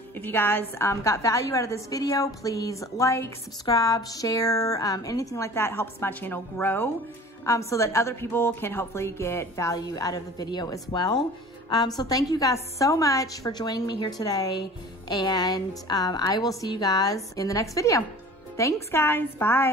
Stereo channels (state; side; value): normal; both; correlation 0.43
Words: If you guys got value out of this video, please like, subscribe, share, anything like that helps my channel grow, so that other people can hopefully get value out of the video as well. So thank you guys so much for joining me here today. And I will see you guys in the next video. Thanks, guys.